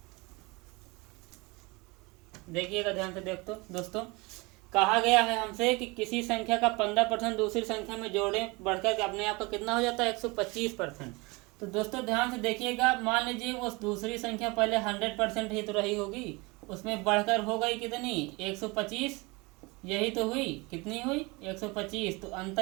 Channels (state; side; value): quieter; left; 25.8 dB